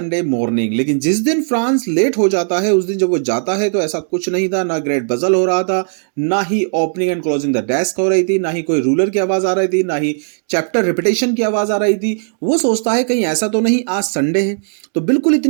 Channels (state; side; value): silent; left; digital silence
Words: morning, लेकिन जिस दिन फ्रांस लेट हो जाता है उस दिन जब वो जाता है तो ऐसा कुछ नहीं था, ना ग्रेट बजल हो रहा था, ना ही opening and closing the desk हो रही थी, ना ही कोई रूलर की आवाज आ रही थी, ना ही चैप्टर रिपीटेशन की आवाज आ रही थी। वो सोचता है कहीं ऐसा तो नहीं आज संडे है, तो बिल्कुल